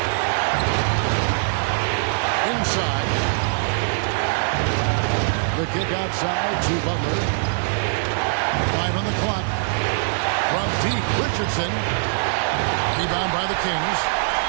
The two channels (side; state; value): left; silent; 64 dB below the other